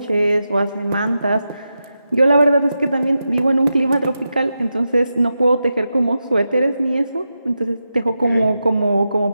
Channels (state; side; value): inverted; both; correlation -0.89